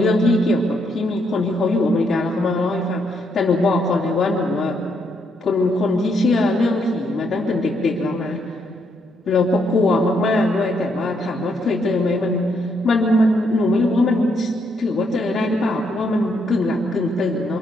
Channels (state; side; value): normal; both; correlation 0.75